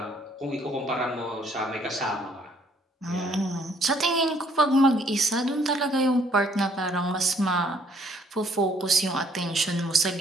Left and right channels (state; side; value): normal; both; correlation 0.64